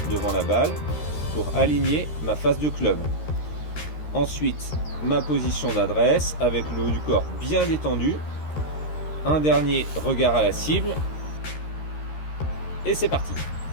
devant la balle pour aligner ma face de club. Ensuite, ma position d'adresse avec le haut du corps bien détendu. Un dernier regard à la cible. Et c'est parti.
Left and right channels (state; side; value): late; right; 13 ms